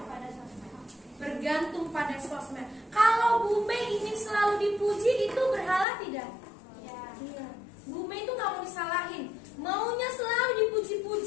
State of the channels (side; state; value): right; drops out; at 5.9 s